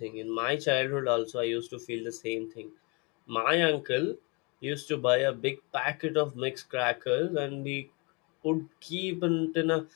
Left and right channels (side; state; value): right; quieter; 30.5 dB